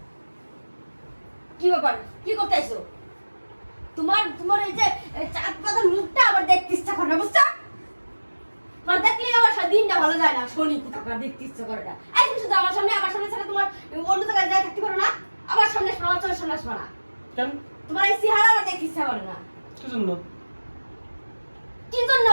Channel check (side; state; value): both; inverted; correlation -1.00